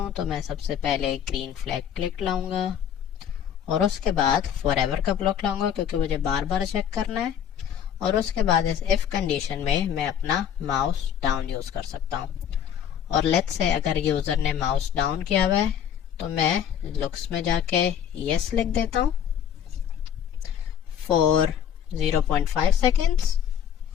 तो मैं सबसे पहले ग्रीन फ्लैग क्लिक लाऊंगा और उसके बाद फॉरएवर का ब्लॉक लाऊंगा क्योंकि मुझे बार बार चेक करना है। और उसके बाद इस इफ कंडीशन में मैं अपना माउस डाउन यूज कर सकता हूं। और लेट्स से अगर यूजर ने माउस डाउन किया हुआ है तो मैं लुक्स में जाके यस लिख देता हूं फॉर 0.5 सेकेंड्स।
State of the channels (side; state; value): right; quieter; 9.1 dB